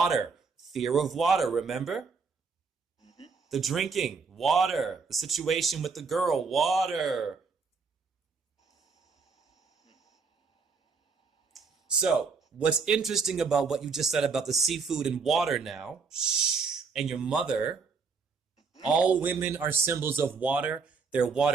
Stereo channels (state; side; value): quieter; left; 4.9 dB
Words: Fear of water, remember? The drinking. Water. The situation with the girl. Water. So, what's interesting about what you just said about the seafood and water now, and your mother, all women are symbols of water. They're